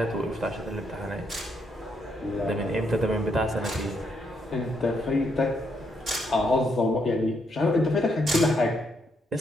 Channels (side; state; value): both; normal; correlation 0.76